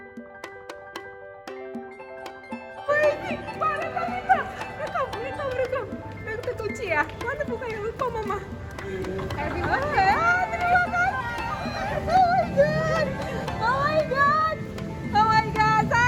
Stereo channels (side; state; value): both; identical; correlation 1.00